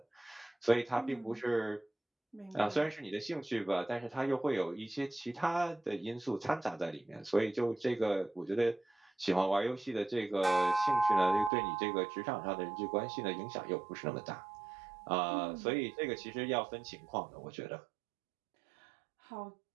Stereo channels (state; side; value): drops out; left; at 11.5 s